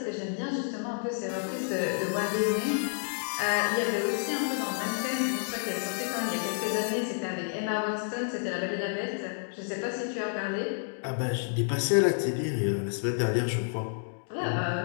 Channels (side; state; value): right; silent; digital silence